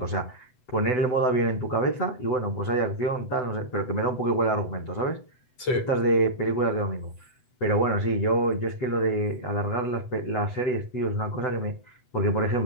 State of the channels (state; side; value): late; right; 8.0 ms